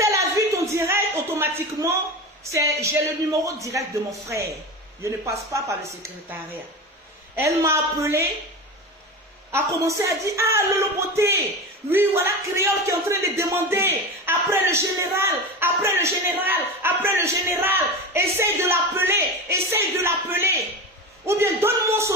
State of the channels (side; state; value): both; normal; correlation 0.25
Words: a vu ton direct, automatiquement, j'ai le numéro direct de mon frère. Je ne passe pas par le secrétariat. Elle m'a appelé, a commencé à dire, ah, Lolo Beauté, oui, voilà Créole qui est en train de demander, après le général, après le général, après le général, essaye de l'appeler. Ou bien donne-moi